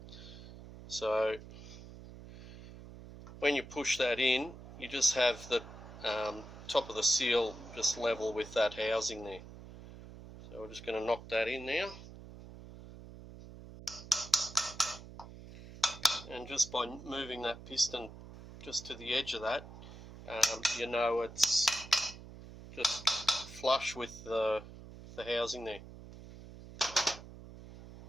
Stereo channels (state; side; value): noise; right; hum, 15 dB below the sound